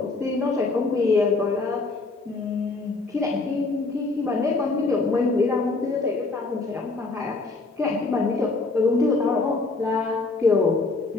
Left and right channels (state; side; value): quieter; right; 3.6 dB